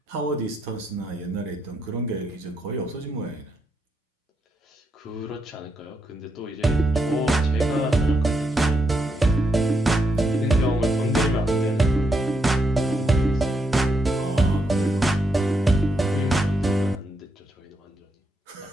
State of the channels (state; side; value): normal; both; correlation 0.80